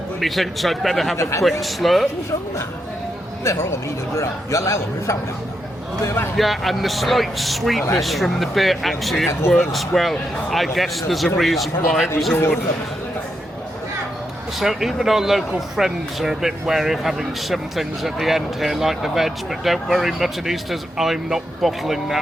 Methinks I'd better have a quick slurp. Yeah, and the slight sweetness from the beer, actually it works well. I guess there's a reason why it was ordered. So even our local friends are a bit wary of having some things at the end here, like the veg, but don't worry, Muttonistas, I'm not bottling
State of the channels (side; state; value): both; normal; correlation 0.83